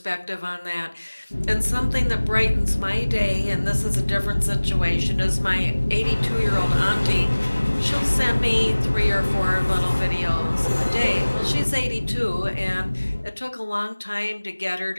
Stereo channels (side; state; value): both; inverted; correlation -1.00